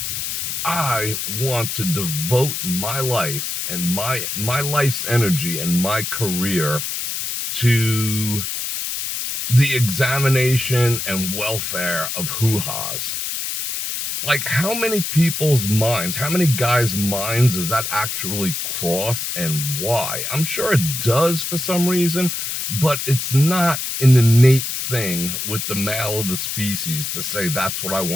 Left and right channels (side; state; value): left; noise; hiss, 3 dB below the sound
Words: I want to devote my life and my life's energy and my career to the examination and welfare of hoo-has? Like, how many people's minds, how many guys' minds does that actually cross, and why? I'm sure it does for some reason, but it's not an innate thing with the male of the species to say that's what I